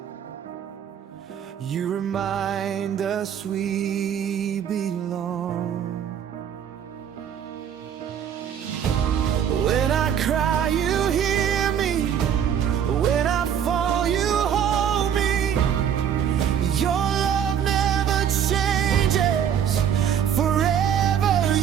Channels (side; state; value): left; quieter; 8.8 dB